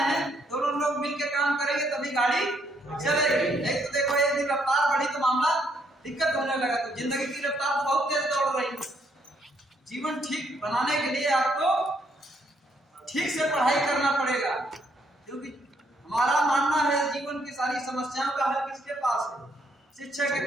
हैं दोनों लोग मिलकर काम करेंगे तभी गाड़ी चलेगी, नहीं तो देखो एक दिन रफ्तार बढ़ी तो मामला दिक्कत होने लगा। तो जिंदगी की रफ्तार तो बहुत तेज दौड़ रही है। जीवन ठीक बनाने के लिए आपको ठीक से पढ़ाई करना पड़ेगा, क्योंकि हमारा मानना है जीवन की सारी समस्याओं का हल किसके पास है? शिक्षा के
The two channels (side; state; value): both; normal; correlation 0.71